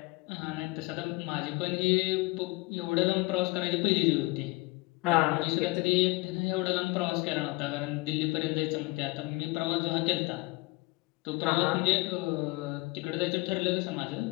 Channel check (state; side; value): quieter; right; 23.8 dB